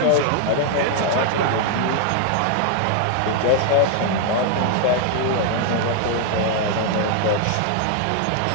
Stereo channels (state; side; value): different; both; correlation 0.00